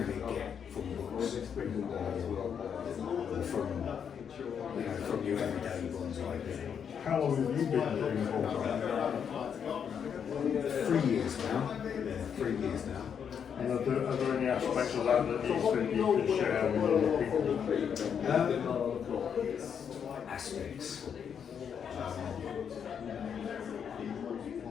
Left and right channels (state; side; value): quieter; right; 7.6 dB